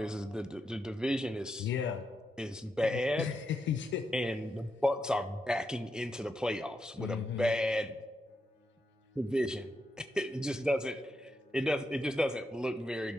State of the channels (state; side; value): normal; both; correlation 0.83